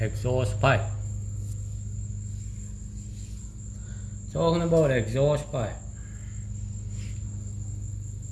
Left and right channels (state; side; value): identical; both; correlation 1.00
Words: exhaust pipe. Talking about exhaust pipe.